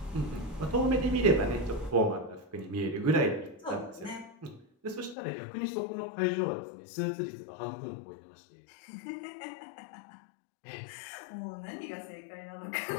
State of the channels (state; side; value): drops out; right; at 5.2 s